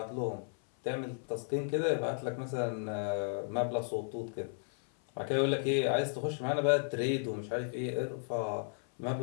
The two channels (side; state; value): right; silent; 55 dB below the other